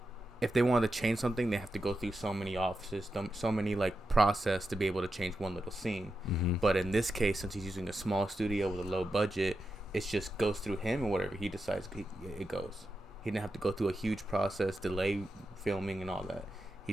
they wanted to change something, they have to go through so many offices, so many like process to be able to change one little scene. Mm-hmm. But in this case, since he's using a small studio with a low budget, it just goes through him, and whatever he decides, it goes. He didn't have to go through a huge process, delay filming and all that. He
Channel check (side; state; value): both; normal; correlation 0.89